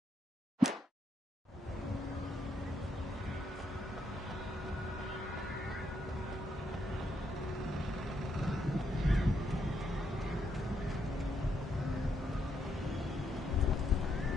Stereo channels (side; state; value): both; normal; correlation 0.77